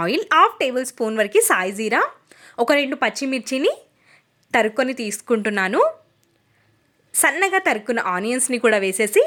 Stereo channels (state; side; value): identical; both; correlation 1.00